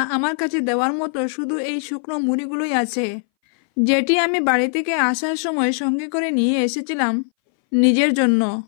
আমার কাছে দেওয়ার মতো শুধু এই শুকনো মুড়িগুলোই আছে, যেটি আমি বাড়ি থেকে আসার সময় সঙ্গে করে নিয়ে এসেছিলাম নিজের জন্য।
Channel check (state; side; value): silent; right; 62 dB below the other